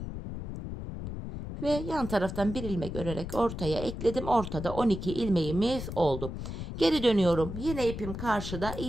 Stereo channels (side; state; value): left; noise; rumble, 7 dB below the sound